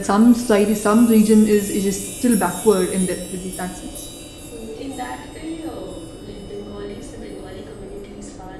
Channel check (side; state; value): both; identical; correlation 1.00